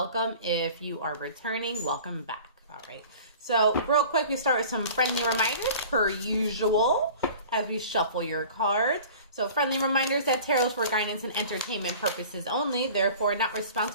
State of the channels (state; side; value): inverted; both; correlation -0.43